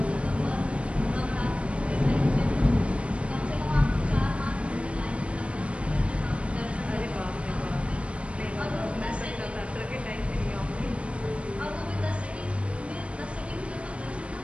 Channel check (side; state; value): left; late; 0.060 ms